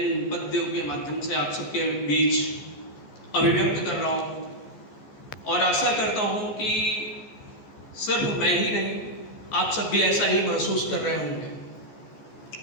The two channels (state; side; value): late; right; 14 ms